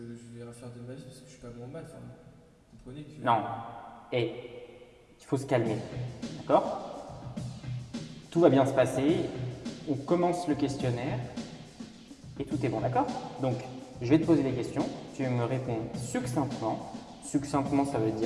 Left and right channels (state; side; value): identical; both; correlation 1.00